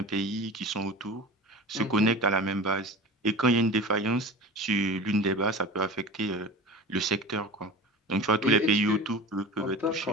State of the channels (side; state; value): both; normal; correlation 0.34